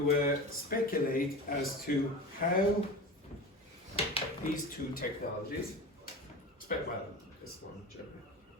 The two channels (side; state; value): both; normal; correlation 0.30